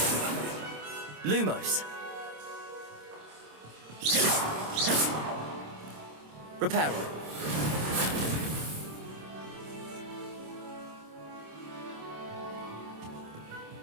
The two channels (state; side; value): late; left; 26 ms